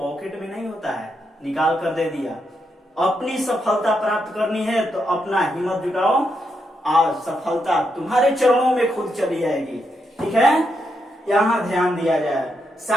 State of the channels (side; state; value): both; normal; correlation 0.81